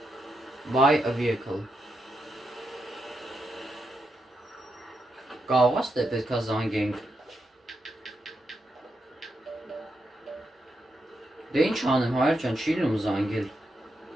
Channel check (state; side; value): normal; both; correlation 0.83